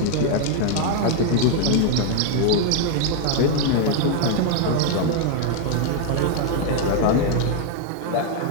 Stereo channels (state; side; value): different; both; correlation 0.00